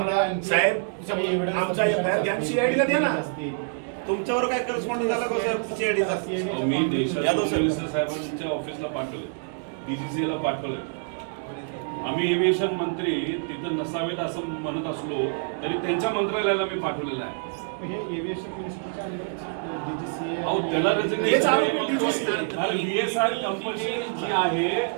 साहेब आमचा एफआयआर घ्या, सीआयडीला द्या ना. तुमच्यावर काय करस्पॉन्डिंग झाला का सर सीआयडीचा? मी देशाच्या मिनिस्टर साहेबांच्या ऑफिसला पाठवले, डीजीसीला पाठवले. आम्ही एव्हिएशन मंत्री तिथं नसावेत असं म्हणत असलो तरी त्यांच्या मंत्रालयाला मी पाठवलेलं आहे. हे एव्हिएशन मिनिस्टरच्या डीजीसी अहो त्याला VSR कंपनी जी आहे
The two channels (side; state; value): left; silent; 61 dB below the other